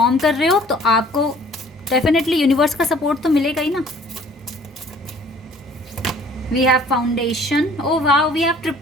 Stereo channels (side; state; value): both; normal; correlation 0.54